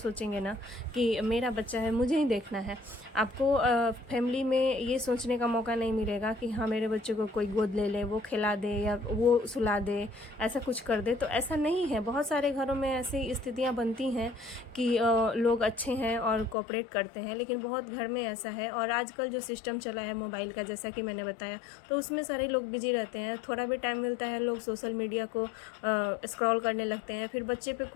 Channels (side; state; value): right; drops out; at 16.6 s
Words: ना कि मेरा बच्चा है, मुझे ही देखना है। आपको फैमिली में ये सोचने का मौका नहीं मिलेगा कि हाँ, मेरे बच्चे को कोई गोद ले ले, वो खिला दे या वो सुला दे, ऐसा कुछ कर दे। तो ऐसा नहीं है। बहुत सारे घरों में ऐसी स्थितियां बनती हैं कि लोग अच्छे हैं और कोऑपरेट करते हैं, लेकिन बहुत घर में ऐसा है। और आजकल जो सिस्टम चला है मोबाइल का, जैसा कि मैंने बताया, तो उसमें सारे लोग बिजी रहते हैं। थोड़ा भी टाइम मिलता है लोग सोशल मीडिया को स्क्रॉल करने लगते हैं, फिर बच्चे पे